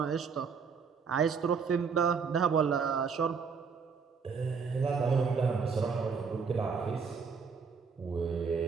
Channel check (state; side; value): quieter; left; 5.7 dB